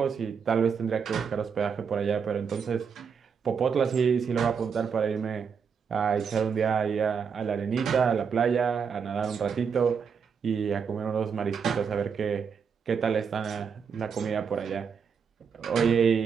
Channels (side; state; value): left; quieter; 6.4 dB